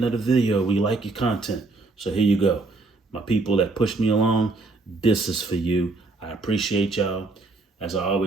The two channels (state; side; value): quieter; left; 3.4 dB